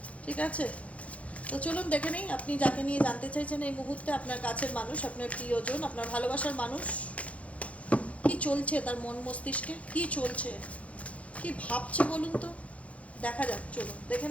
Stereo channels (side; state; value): right; late; 0.065 ms